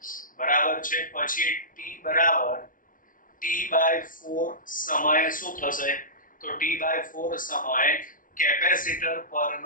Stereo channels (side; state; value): right; late; 0.39 ms